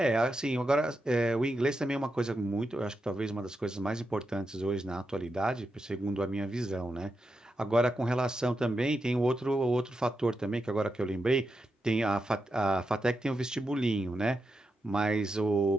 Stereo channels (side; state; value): both; normal; correlation 0.87